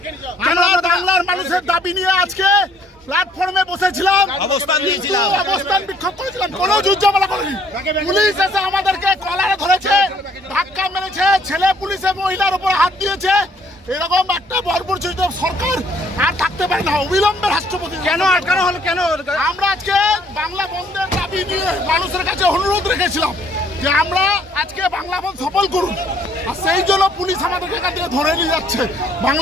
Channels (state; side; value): normal; both; correlation 0.63